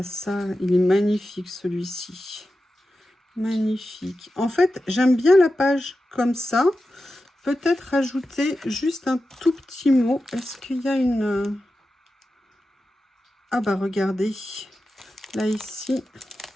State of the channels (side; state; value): both; normal; correlation 0.92